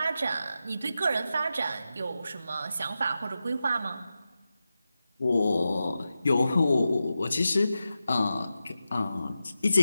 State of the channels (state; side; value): inverted; both; correlation -0.91